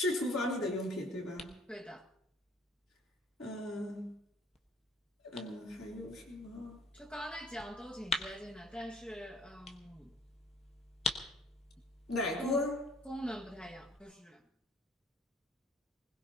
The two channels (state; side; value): normal; both; correlation 0.57